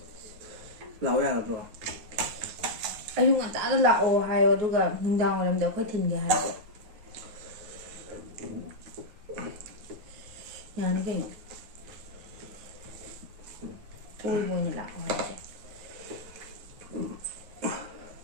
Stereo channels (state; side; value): late; left; 9.3 ms